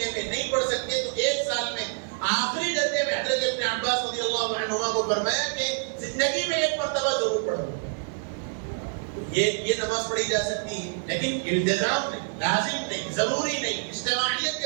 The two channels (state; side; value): silent; left; 60 dB below the other